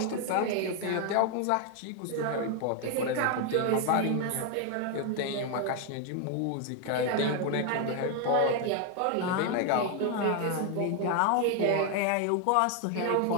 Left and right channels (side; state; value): both; different; correlation 0.01